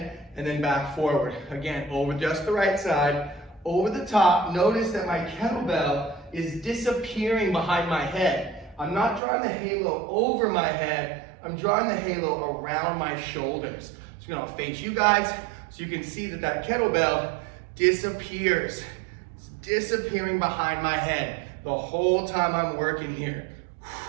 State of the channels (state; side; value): drops out; left; at 9.2 s